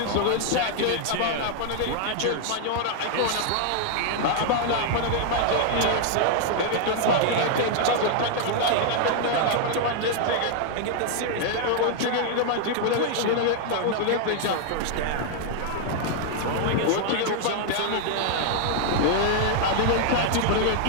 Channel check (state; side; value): different; both; correlation 0.00